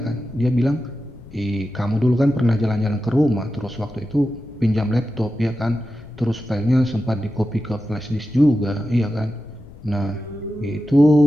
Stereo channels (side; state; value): left; noise; rumble, 19 dB below the sound